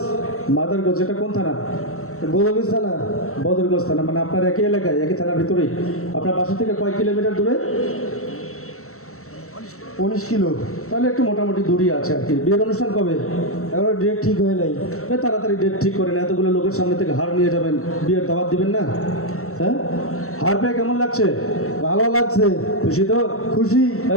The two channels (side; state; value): right; late; 0.64 ms